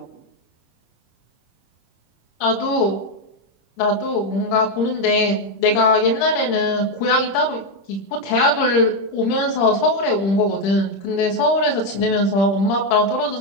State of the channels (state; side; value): late; right; 26 ms